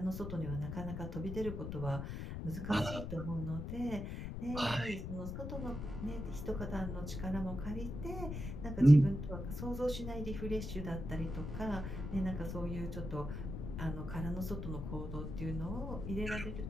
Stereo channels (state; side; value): noise; left; rumble, 5 dB below the sound